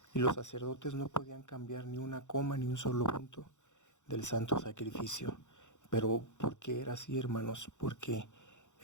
Y los sacerdotes no podían cambiar ni una coma ni un solo punto del santo sacrificio. Pero ¿por qué era así, hermanos? Porque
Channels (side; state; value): right; late; 0.85 ms